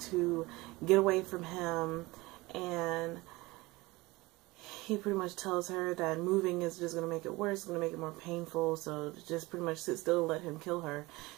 to get away from him, and he pretty much tells her that moving is just going to make it worse, it's going to make it more painful, so just pretty much sit still and let him kill her.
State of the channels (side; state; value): left; quieter; 21.6 dB